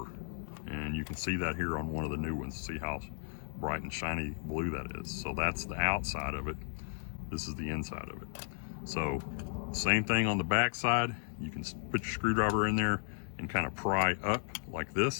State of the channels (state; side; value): silent; right; digital silence